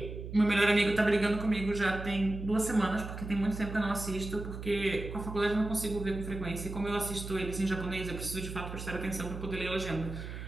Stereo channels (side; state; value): right; noise; hum, 8 dB below the sound